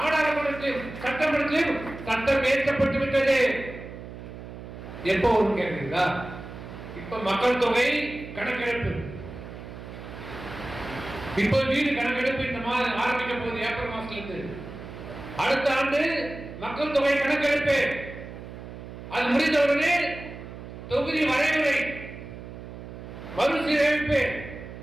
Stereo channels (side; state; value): right; noise; hum, 12 dB below the sound